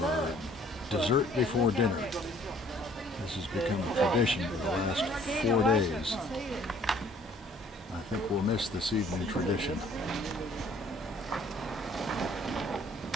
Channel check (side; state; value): both; normal; correlation 0.58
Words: dessert before dinner. This has become a tradition for the last 4 days. I think we'll miss this evening tradition.